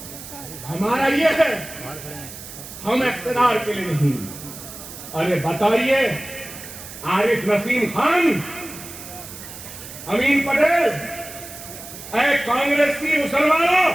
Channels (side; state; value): right; noise; hiss, 13 dB below the sound